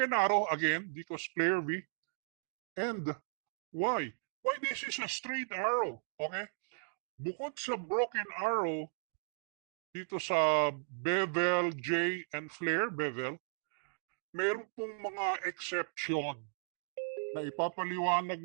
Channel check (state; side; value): silent; left; digital silence